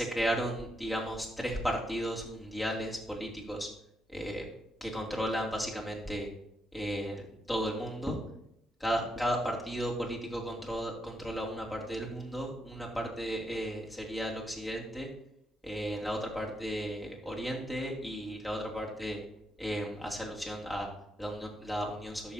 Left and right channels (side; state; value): both; normal; correlation 0.80